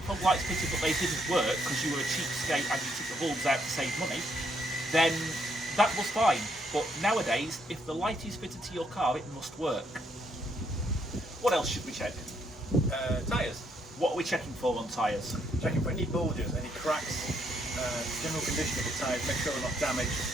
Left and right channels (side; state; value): both; normal; correlation 0.73